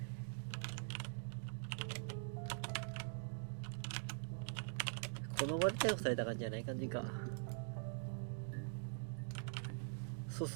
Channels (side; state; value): left; silent; digital silence